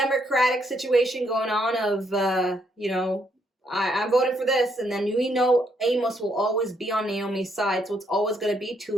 situation going on of, I'm voting for this, and then Amos will always be on Naomi's side, so it's always going to be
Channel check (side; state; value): both; normal; correlation 0.73